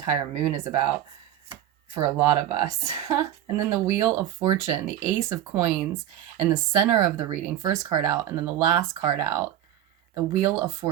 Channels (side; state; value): left; quieter; 11.7 dB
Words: moon is about for a lot of us. And then the Wheel of Fortune, the Ace of Coins in the center of the reading, first card out, and then the last card out, the Wheel of